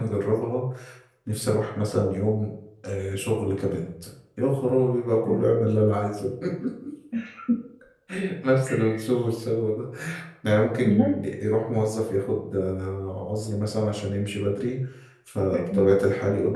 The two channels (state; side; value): identical; both; correlation 1.00